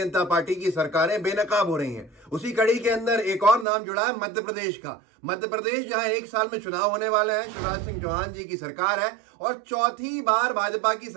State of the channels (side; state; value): left; drops out; at 3.7 s